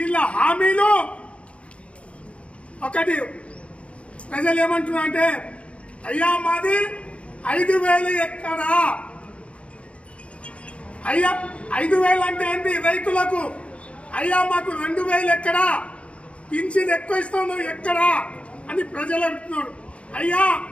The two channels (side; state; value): right; late; 0.061 ms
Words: హామీలు ఒకటి. ప్రజలు ఏమంటున్నారు అంటే, అయ్యా మాది 5,000 ఎక్కడా, అయ్యా 5,000 అంటే ఏంటి రైతులకు, అయ్యా మాకు 2,000 ఎక్కడా, పింఛన్ ఎక్కువ ఇస్తాను ఎక్కడా అని ప్రజలు అంటున్నారు. అయ్యా